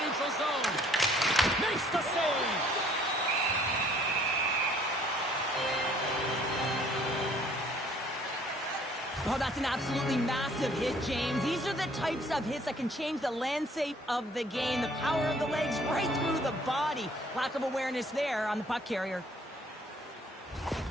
neutral zone. Makes the save. Oh, that's an absolutely massive hit, James. These are the types of hits that can change the landscape of the game. The power of the legs right through the body. Lack of awareness there on the puck carrier.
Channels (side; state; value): both; normal; correlation 0.59